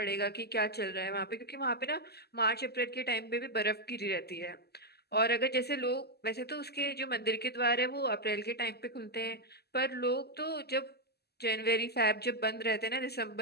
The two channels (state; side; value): late; right; 0.47 ms